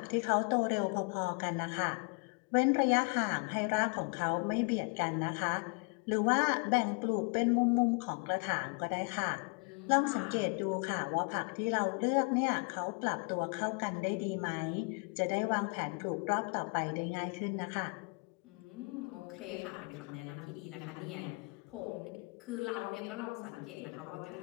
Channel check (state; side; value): quieter; right; 33.2 dB